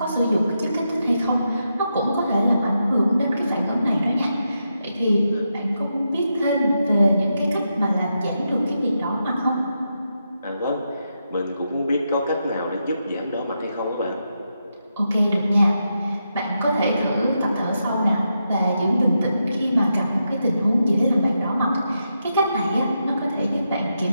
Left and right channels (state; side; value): inverted; both; correlation -0.85